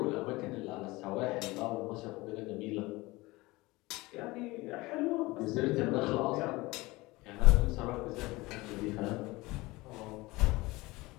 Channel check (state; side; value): quieter; right; 21.4 dB